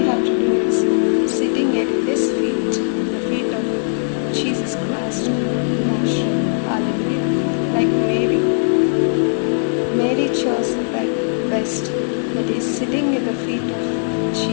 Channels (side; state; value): right; silent; digital silence